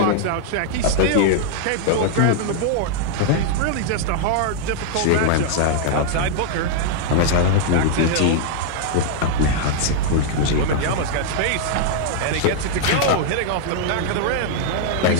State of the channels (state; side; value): different; both; correlation -0.01